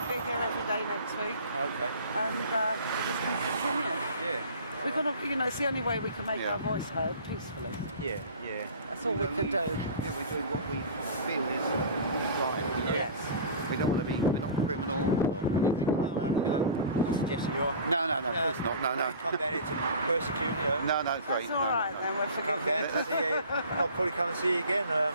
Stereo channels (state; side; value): inverted; both; correlation -0.40